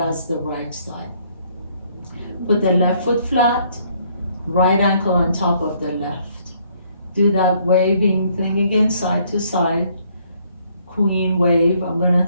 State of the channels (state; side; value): inverted; both; correlation -0.66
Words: as the right side. Put the left foot flat, right ankle on top of the left. Do that waving thing again, side to side. Queen wave. I'm gonna